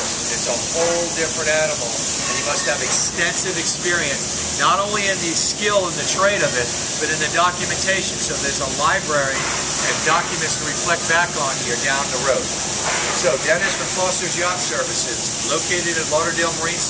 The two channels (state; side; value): identical; both; correlation 1.00